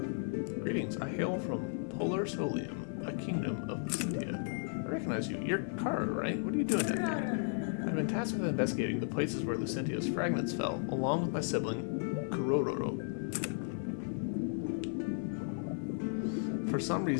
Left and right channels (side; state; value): right; silent; 55 dB below the other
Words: Greetings. I hail from Polar Solium, a kingdom of Lucentia. I recognize you. You're Kara, right? What are you doing down here? I've been tasked with investigating the places where Lucentia's fragments fell, along with my sibling, Kurororo. For some